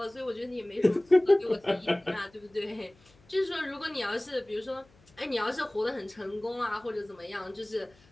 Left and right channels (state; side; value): noise; left; hum, 29 dB below the sound